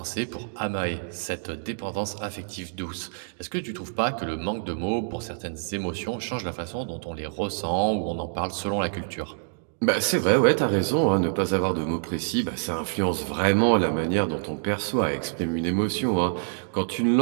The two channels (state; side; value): silent; left; digital silence